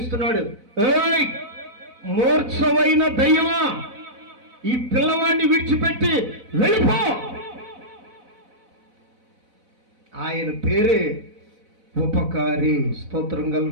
ఏయ్ మూర్ఛమైన దయ్యమా, ఈ పిల్లవాడిని విడిచిపెట్టి వెళ్ళిపో. ఆయన పేరే ఉపకారి. స్తోత్రం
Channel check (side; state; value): left; late; 4.0 ms